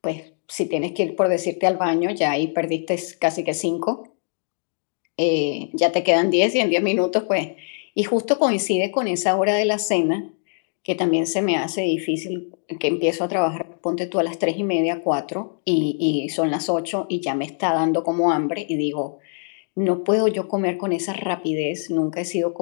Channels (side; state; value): right; silent; digital silence